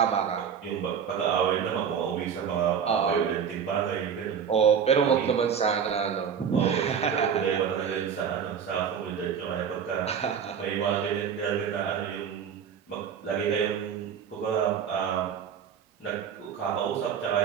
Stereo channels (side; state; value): left; quieter; 7.6 dB